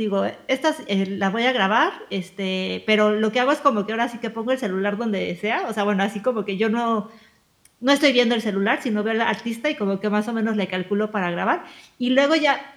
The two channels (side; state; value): both; identical; correlation 1.00